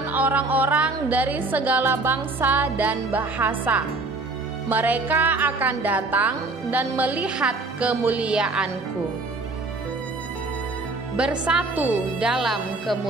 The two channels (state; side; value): quieter; left; 3.3 dB